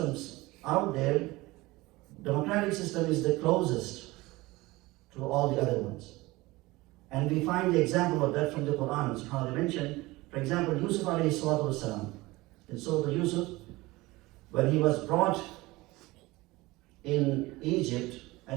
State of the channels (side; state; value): left; quieter; 20.6 dB